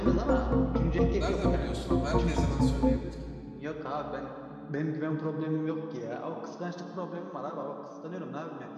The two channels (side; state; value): both; identical; correlation 1.00